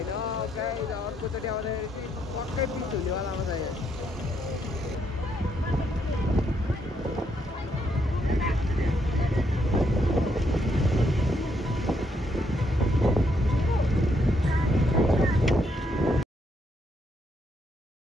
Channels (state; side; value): normal; both; correlation 0.75